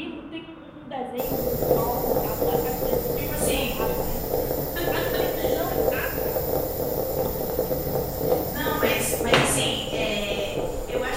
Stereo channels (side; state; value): both; identical; correlation 1.00